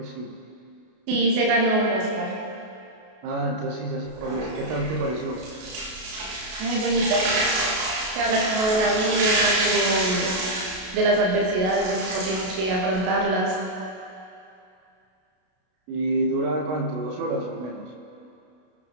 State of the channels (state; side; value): late; left; 32 ms